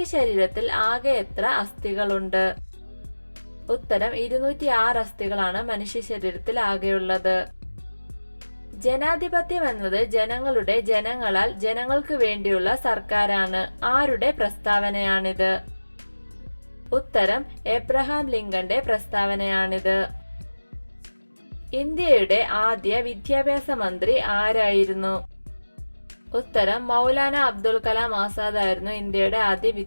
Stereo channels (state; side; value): inverted; both; correlation -1.00